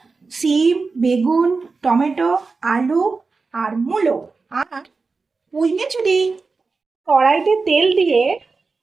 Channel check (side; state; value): left; quieter; 4.2 dB